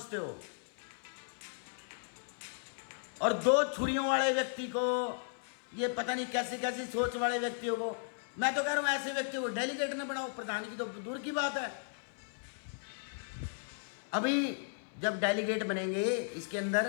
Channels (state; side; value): silent; right; 54 dB below the other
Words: हो। और 2 छुरियों वाले व्यक्ति को, ये पता नहीं कैसी कैसी सोच वाले व्यक्तियों को, मैं तो कह रहा हूं ऐसे व्यक्ति को डेलीगेट न बनाओ। प्रधान की तो दूर की बात है। अभी जब डेलीगेट बनेंगे, इसके